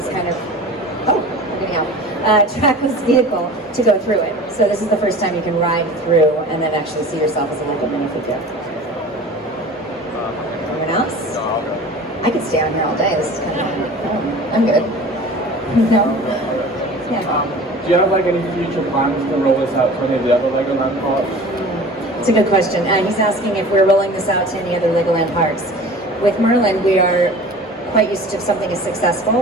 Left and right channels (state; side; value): normal; both; correlation 0.40